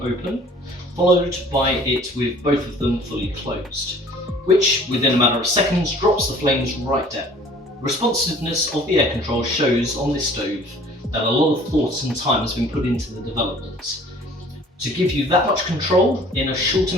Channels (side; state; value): both; normal; correlation 0.51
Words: followed by it with both of them fully closed, which within a matter of seconds drops the flames right down. The responsiveness of the air control shows on this stove that a lot of thought and time has been put into the development to give you that much control in a short